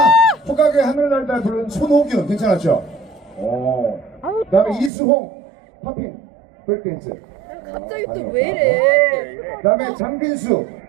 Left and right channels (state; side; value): drops out; left; at 4.9 s